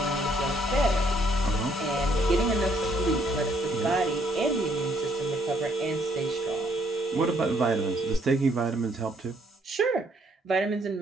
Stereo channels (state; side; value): normal; both; correlation 0.68